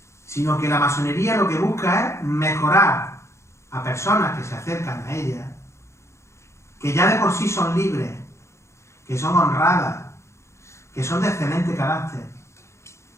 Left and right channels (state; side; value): late; right; 0.14 ms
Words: Sino que la masonería lo que busca es mejorar a personas que se acercan a ella, que ya de por sí son libres, que son honradas, que son de excelente carácter